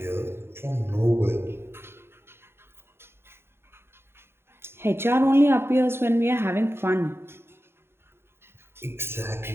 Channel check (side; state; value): left; late; 0.11 ms